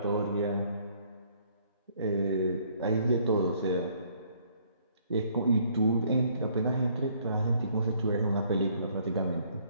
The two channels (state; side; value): inverted; both; correlation -0.64